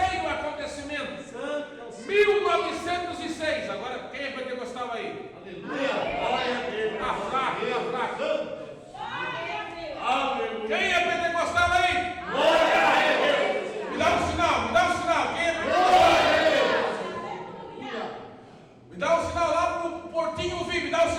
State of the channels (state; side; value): identical; both; correlation 1.00